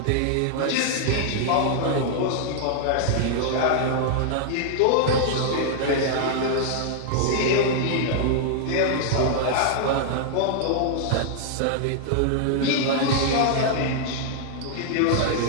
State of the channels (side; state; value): both; different; correlation -0.01